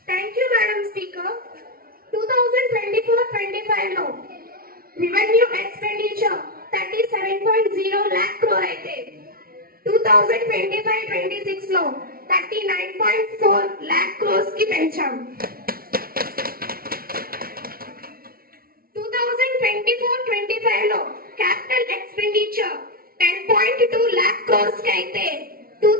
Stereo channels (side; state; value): left; late; 0.43 ms